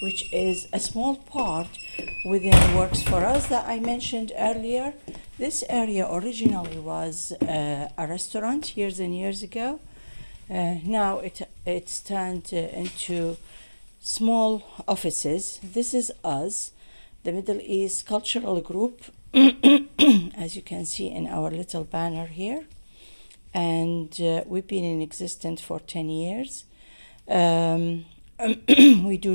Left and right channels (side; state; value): both; inverted; correlation -1.00